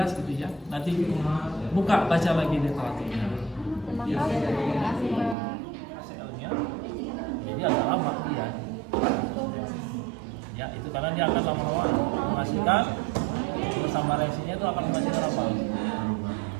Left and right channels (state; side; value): drops out; left; at 5.4 s